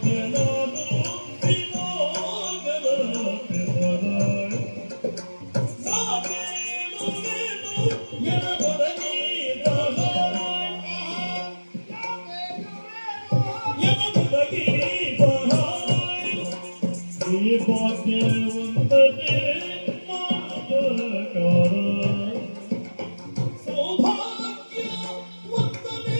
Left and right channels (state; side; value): inverted; both; correlation -1.00